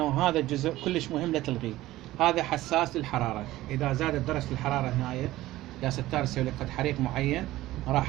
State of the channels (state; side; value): quieter; left; 16.3 dB